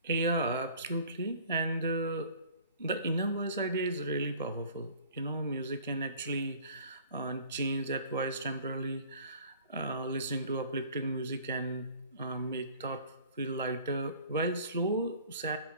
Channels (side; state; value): both; inverted; correlation -0.49